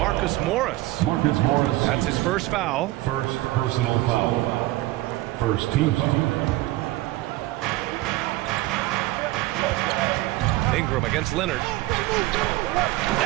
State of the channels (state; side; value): quieter; left; 18.1 dB